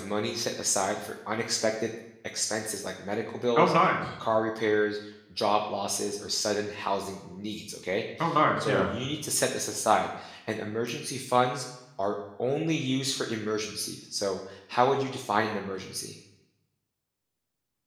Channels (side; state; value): both; identical; correlation 1.00